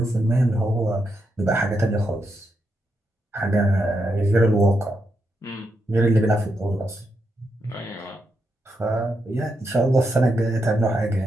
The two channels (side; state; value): both; normal; correlation 0.83